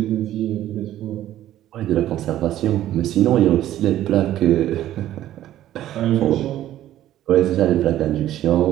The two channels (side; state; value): left; quieter; 13.0 dB